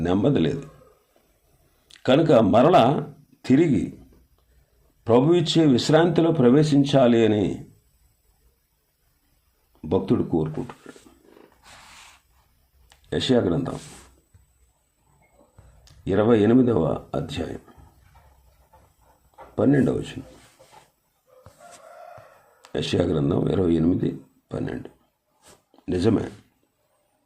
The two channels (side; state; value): both; identical; correlation 1.00